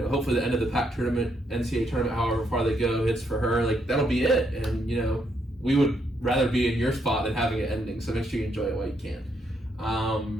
the end of the PAC tournament, NCAA tournament, however far they go, hits for her, like, that'll be it. And we would rather be in your spot than having it ending. So make sure you enjoy it while you can.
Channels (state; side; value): normal; both; correlation 0.75